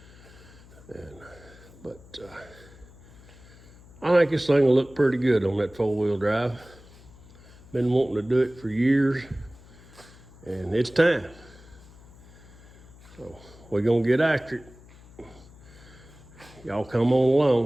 But I think this thing will look pretty good on that 4-wheel drive. Been wanting to do it for years, and it's time. So we're gonna get after it. Y'all come on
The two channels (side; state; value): left; noise; hum, 22 dB below the sound